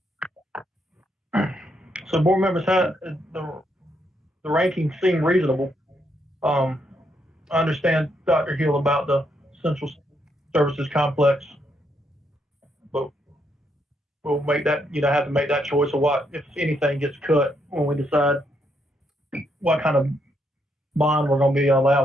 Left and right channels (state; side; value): normal; both; correlation 0.76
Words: So board members had the rankings seem reasonable. I understand Dr. Hill about the Central Services Complex, but we'll make that, have to make that choice of what, if anything gets cut when we decide what kind of bond we're going to be